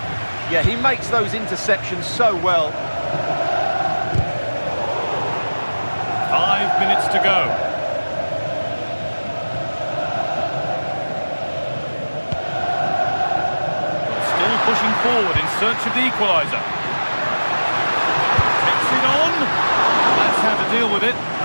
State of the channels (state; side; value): inverted; both; correlation -1.00